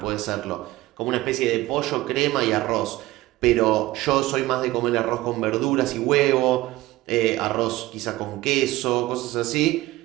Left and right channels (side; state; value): left; quieter; 17.9 dB